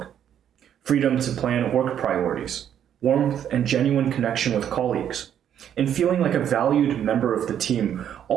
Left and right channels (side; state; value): left; quieter; 9.6 dB